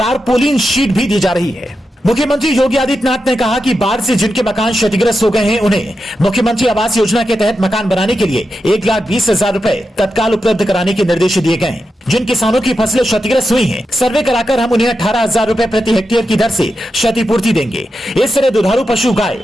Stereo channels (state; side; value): normal; both; correlation 0.88